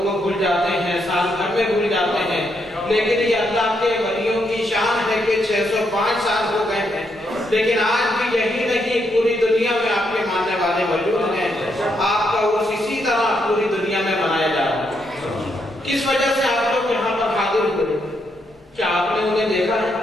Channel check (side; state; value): both; normal; correlation 0.78